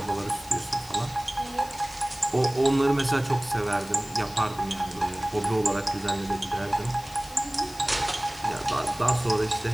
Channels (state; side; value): noise; left; hiss, 19 dB below the sound